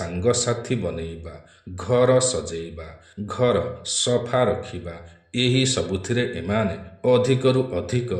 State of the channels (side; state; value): both; identical; correlation 1.00